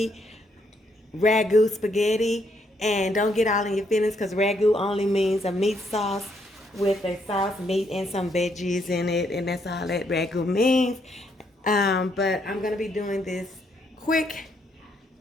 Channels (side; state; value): both; normal; correlation 0.74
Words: ragu spaghetti. And don't get all in your feelings, because ragu only means a meat sauce with a sauce, meat, and some veggies in it, and that's all that ragu means. But I'm gonna be doing this quick